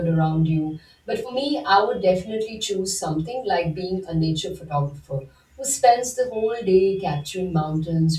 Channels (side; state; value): both; identical; correlation 1.00